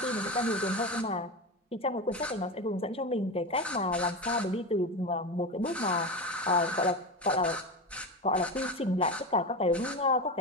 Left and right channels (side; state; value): both; normal; correlation 0.21